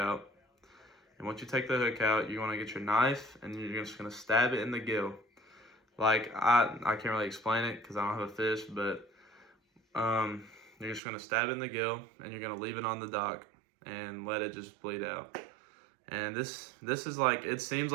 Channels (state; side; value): drops out; left; at 11.0 s